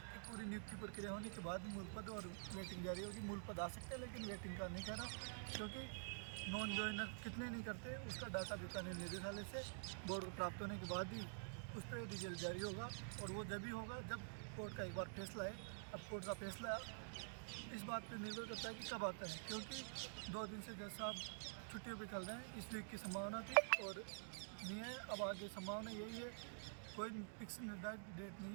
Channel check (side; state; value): left; silent; digital silence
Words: कि पूरी नियुक्ति प्रक्रिया होने के बाद मूल पद और वेटिंग जारी होगी। मूल पद आ सकते हैं लेकिन वेटिंग का नहीं करा, क्योंकि नॉन ज्वाइनर कितने नहीं करते उसका डाटा बीकानेर निदेशालय से बोर्ड को प्राप्त होने के बाद ही उस पर रिजल्ट जारी होगा। और वो जब भी होगा जब कोर्ट का एक बार फैसला है। अब कोर्ट का फैसला इस बात पर निर्भर करता है कि कब आता है, क्योंकि 2 दिन से जज साहब छुट्टियों पे चल रहे हैं। इस वीक की संभावना थी और नहीं है, अब आगे संभावना यही है, कोई फिक्स निर्धारित डेट